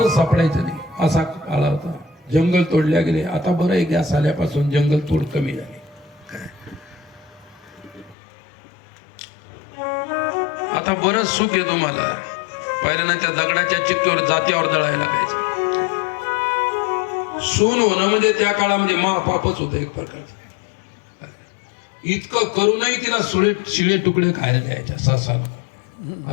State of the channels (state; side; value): drops out; right; at 8.2 s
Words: सापडायचं नाही असा काळ होता. जंगल तोडल्या गेले. आता बरं आहे, गॅस आल्यापासून जंगल तोड कमी झाली. आता बरंच सुख आहे तुम्हाला. पहिल्यांदा त्या दगडाच्या चिक्कीवर जात्यावर दळायला लागायचं. सून होणं म्हणजे त्या काळामध्ये महापापच होतं एक प्रकारचं. इतकं करूनही तिला शिळे तुकडे खायला द्यायच्या सासाला.